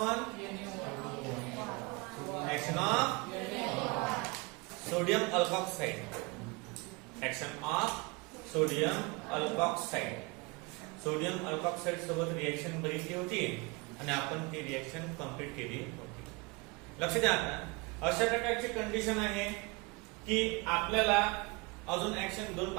action of sodium alkoxide, action of sodium alkoxide. Sodium alkoxide सोबत रिएक्शन बघितली होती आणि आपण ती रिएक्शन कंप्लीट केली होती. लक्ष द्या. आता अशा प्रकारची कंडिशन आहे की आपल्याला अजून ऍक्शन दोन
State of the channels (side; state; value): left; quieter; 27.4 dB